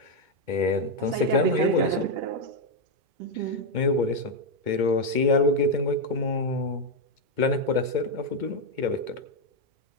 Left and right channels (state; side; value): late; left; 2.2 ms